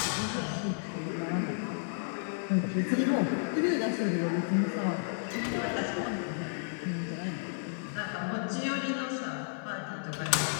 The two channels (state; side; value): silent; right; digital silence